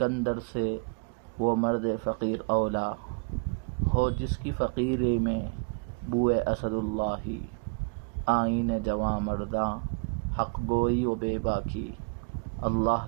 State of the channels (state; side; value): quieter; left; 34.4 dB